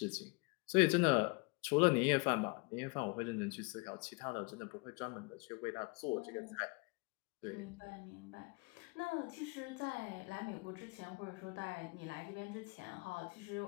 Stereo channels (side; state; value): right; quieter; 28.6 dB